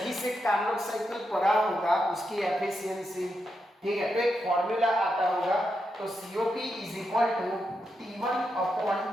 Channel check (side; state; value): both; normal; correlation 0.85